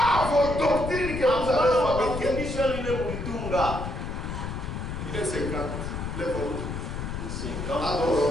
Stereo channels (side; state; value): left; noise; rumble, 5 dB below the sound